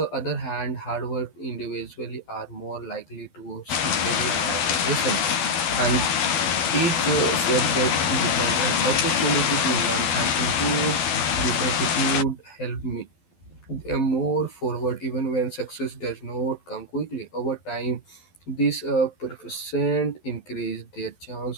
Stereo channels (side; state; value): right; late; 12 ms